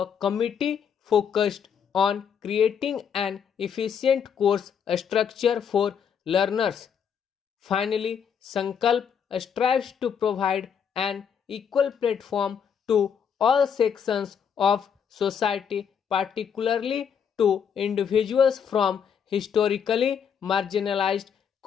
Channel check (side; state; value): right; quieter; 7.5 dB